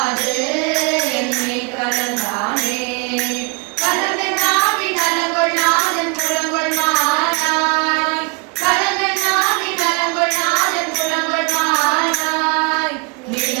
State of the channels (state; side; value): quieter; left; 30.9 dB